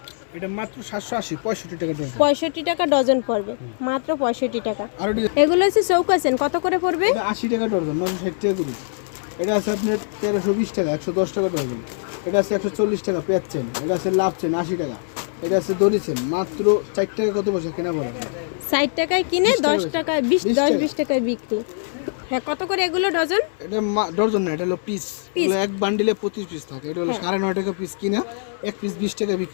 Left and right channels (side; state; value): right; silent; 64 dB below the other